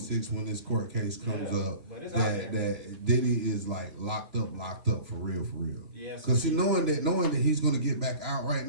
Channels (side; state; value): left; late; 3.2 ms